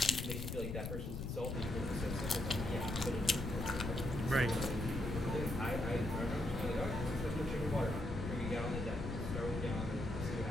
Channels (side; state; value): left; noise; rumble, 4 dB below the sound